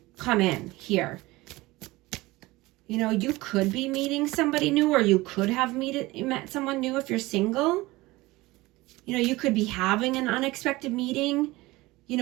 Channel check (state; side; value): quieter; left; 20.3 dB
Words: come in here. You know, you could be meeting somebody new, or you could have met someone new if you're single. You know, you could be having an unexpected meeting, you